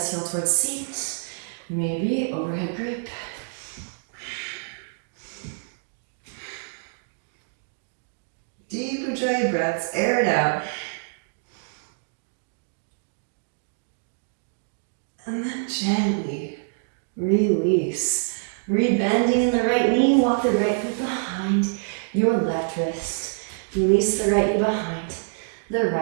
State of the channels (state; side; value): silent; left; digital silence